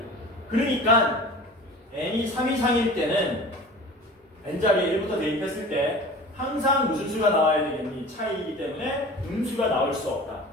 그러니까 n이 3 이상일 때는 n자리에 1부터 대입했을 때 항상 무슨 수가 나와야 되겠니? 차이이기 때문에 음수가 나올 수 없다.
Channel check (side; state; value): both; normal; correlation 0.39